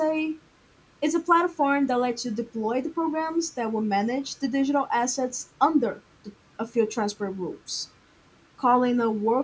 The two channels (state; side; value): identical; both; correlation 1.00